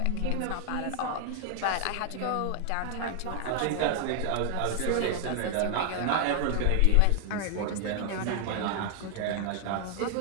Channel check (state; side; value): different; both; correlation 0.00